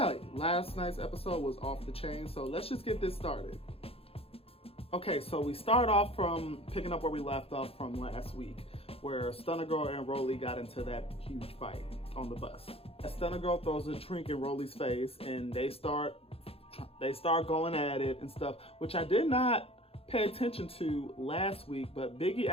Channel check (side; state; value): right; late; 0.28 ms